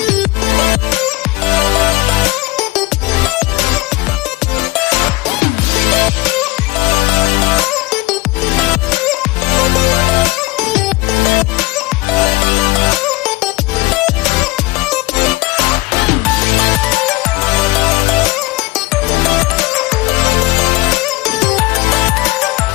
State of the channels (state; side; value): quieter; right; 20.8 dB